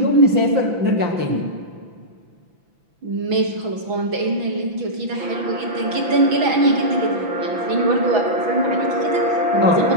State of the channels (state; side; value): late; left; 6.1 ms